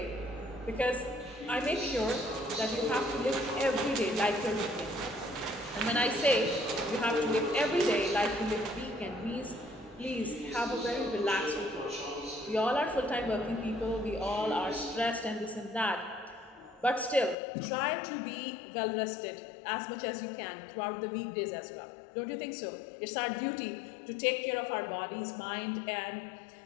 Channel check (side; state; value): right; drops out; at 17.4 s